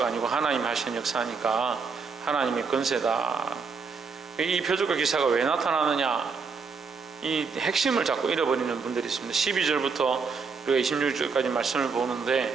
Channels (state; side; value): quieter; left; 5.1 dB